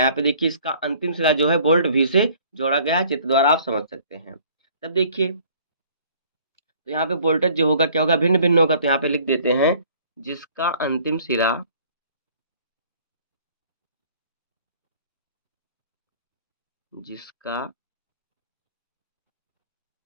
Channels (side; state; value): both; inverted; correlation -0.55